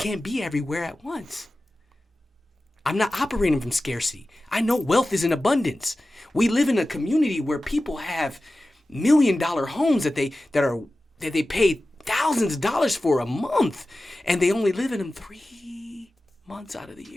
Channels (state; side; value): normal; both; correlation 0.95